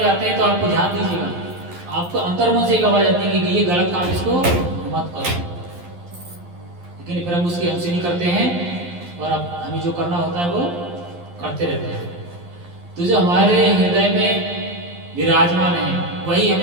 हैं तो आपको ध्यान दीजिएगा, आपको अंतर्मन से एक आवाज आती है कि ये गलत काम, इसको मत करो। लेकिन फिर हम उसकी हमसे नहीं करते हैं और अब हमें जो करना होता है वो करते रहते हैं। तो जो हमारे हृदय में विराजमान है वही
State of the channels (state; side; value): late; left; 11 ms